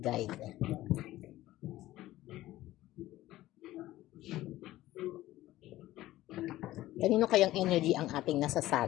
Kanino kayang energy ang ating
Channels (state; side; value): quieter; right; 15.7 dB